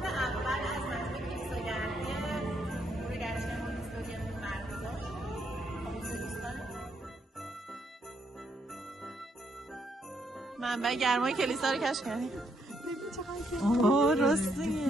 منبع گرمای کلیسا رو کشف کردیم. اوه راستیه.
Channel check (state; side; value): normal; both; correlation 0.75